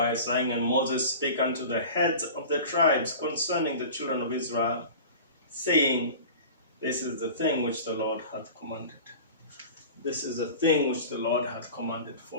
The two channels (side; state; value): both; inverted; correlation -0.38